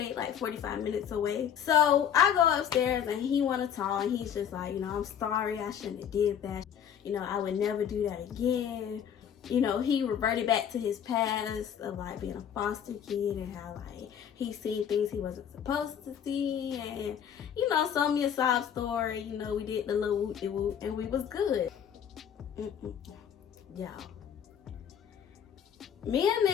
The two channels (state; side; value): quieter; right; 8.7 dB